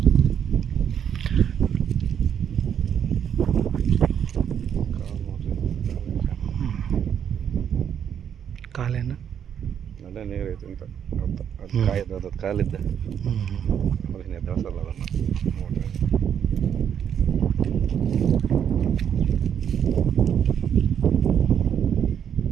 ಕಾಲೇನು ಅದೇ ನೀರೈತೆ ಅಂತ ಅದು ಕಾಯ್ದು ಅದು ಕಾಲಿದ್ದ ಅದನ್ನ ಎದ್ದಸಲ್ಲ ಅದನ್ನು ನೋಡ್ರಿ.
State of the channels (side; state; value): left; quieter; 8.6 dB